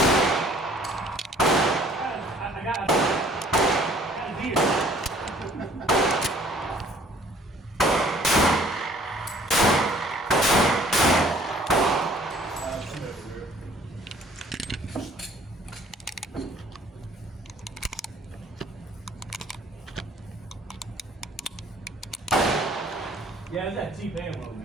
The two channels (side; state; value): both; normal; correlation 0.57